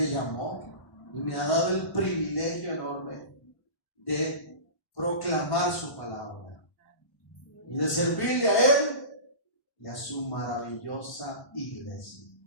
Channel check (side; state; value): right; late; 1.1 ms